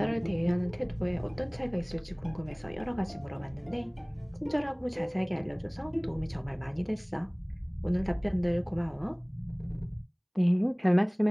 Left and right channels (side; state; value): both; identical; correlation 1.00